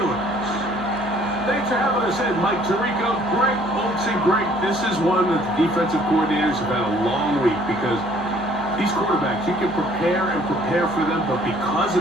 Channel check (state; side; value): normal; both; correlation 0.59